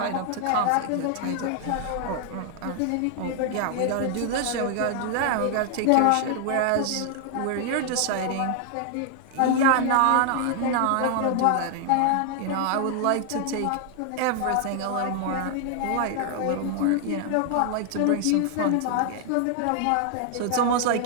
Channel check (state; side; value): different; both; correlation 0.00